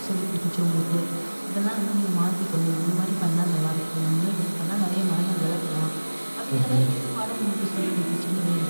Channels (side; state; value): both; inverted; correlation -1.00